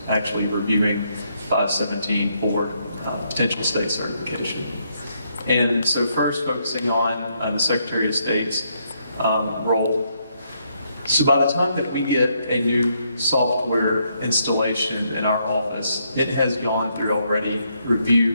actually reviewing 517 for potential state certification. And so first, focusing on the Secretary of State's role. So by the time that we get a new software installation in our office, it has gone through already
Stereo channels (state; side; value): inverted; both; correlation -0.75